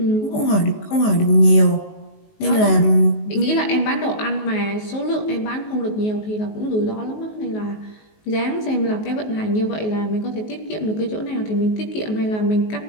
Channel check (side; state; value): right; late; 19 ms